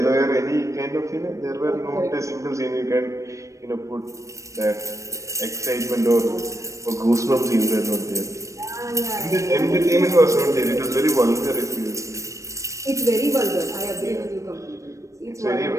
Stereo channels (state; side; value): late; left; 0.15 ms